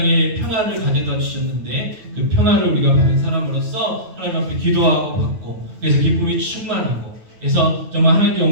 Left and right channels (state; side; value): late; left; 9.2 ms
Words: 평화를 가져다 주셨는데 그 평화를 우리가 받은 사람으로서 하나님 앞에 기도하고 받고, 그래서 기쁨이 충만하고, 그래서 정말 하나님께